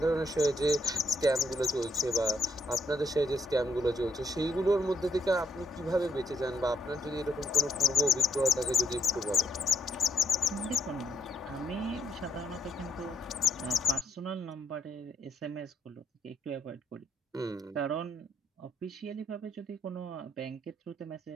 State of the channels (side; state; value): both; normal; correlation 0.73